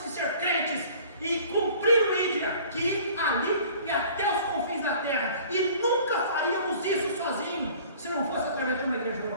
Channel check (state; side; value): inverted; both; correlation -0.49